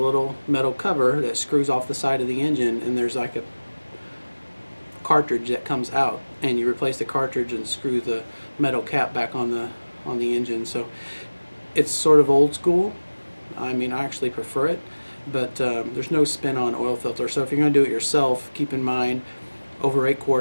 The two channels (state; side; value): inverted; both; correlation -1.00